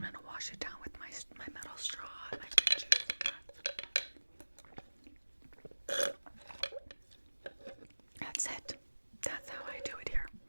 I'm gonna wash it down with my metal straw and my fruit juice. That's it. That's how I do it here.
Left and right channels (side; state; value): both; inverted; correlation -1.00